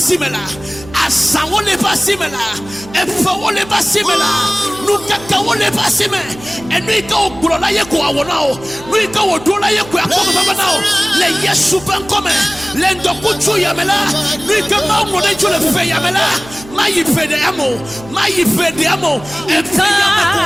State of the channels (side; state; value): right; noise; hum, 18 dB below the sound